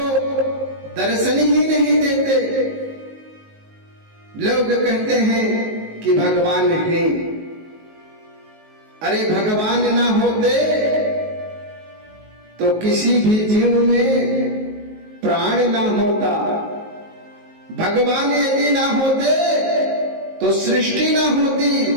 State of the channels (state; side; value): late; left; 19 ms